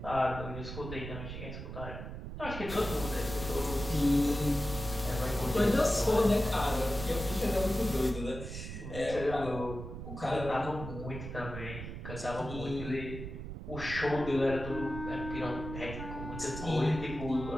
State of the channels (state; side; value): noise; right; rumble, 8 dB below the sound